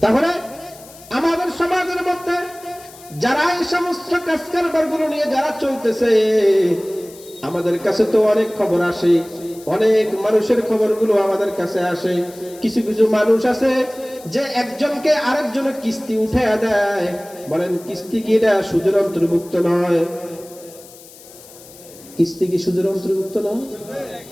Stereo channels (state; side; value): noise; left; hiss, 21 dB below the sound